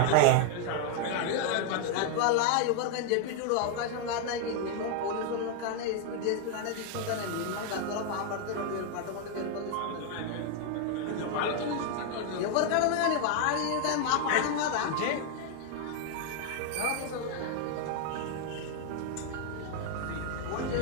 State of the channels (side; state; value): both; different; correlation 0.00